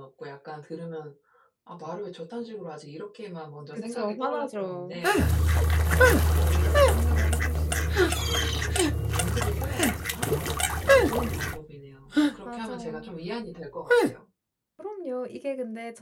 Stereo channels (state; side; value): identical; both; correlation 1.00